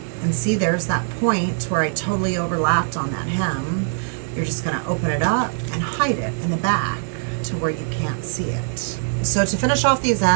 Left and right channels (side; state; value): left; silent; digital silence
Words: And see, there's that point where I totally overlapped on that hem. You're just gonna open it up and hide it in the back to where you can't see it. So to finish off these